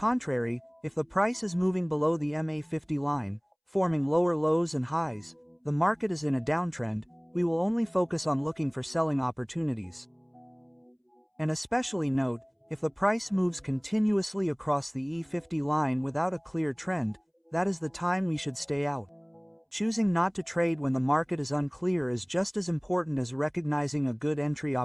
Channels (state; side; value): identical; both; correlation 1.00